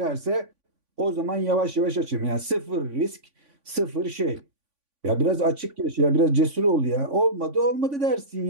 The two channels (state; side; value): late; left; 3.5 ms